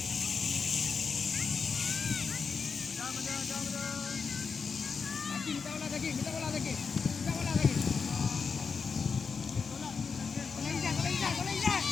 Minta bola lagi. Minta bola lagi. Minta bola lagi. Bola Izan. Bola Izan. Bola Izan.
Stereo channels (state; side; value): quieter; right; 5.4 dB